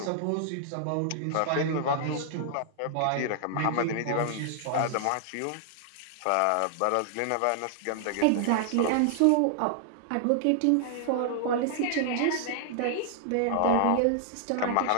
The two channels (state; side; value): different; both; correlation -0.01